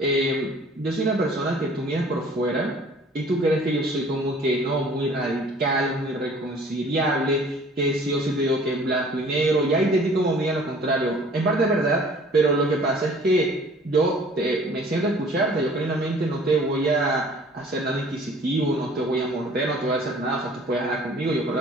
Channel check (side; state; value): both; normal; correlation 0.51